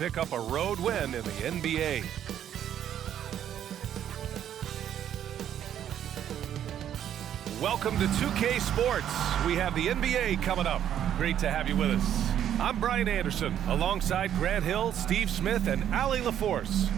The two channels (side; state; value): left; quieter; 10.2 dB